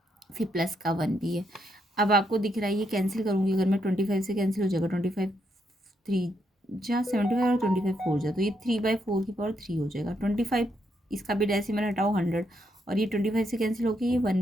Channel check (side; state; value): both; normal; correlation 0.78